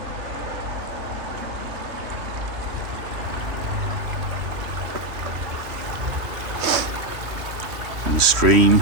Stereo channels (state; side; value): late; left; 2.6 ms